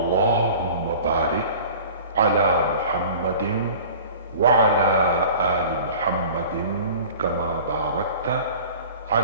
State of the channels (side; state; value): both; inverted; correlation -0.42